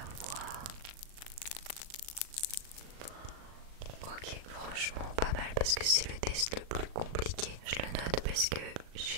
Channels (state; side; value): late; left; 38 ms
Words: fois. Ok, franchement pas mal parce que c'est le test le plus compliqué. Je le note parce que